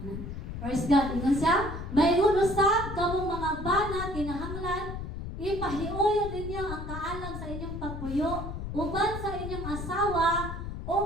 Praise God. Ingon siya, mayroon usab kamong mga bana kinahanglan, ipahiuyon ninyo ang kaalam sa inyong pagpuyo, uban sa inyong asawa,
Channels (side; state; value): left; noise; rumble, 7 dB below the sound